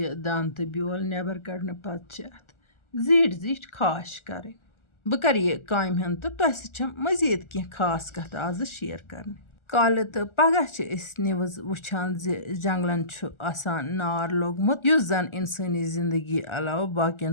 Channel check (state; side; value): late; right; 1.4 ms